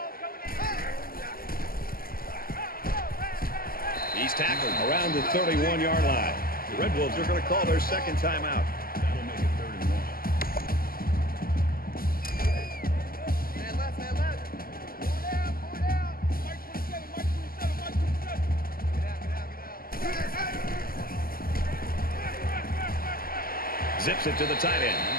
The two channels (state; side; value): late; right; 0.42 ms